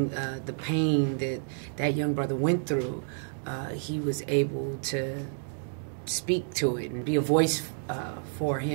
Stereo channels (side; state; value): left; silent; digital silence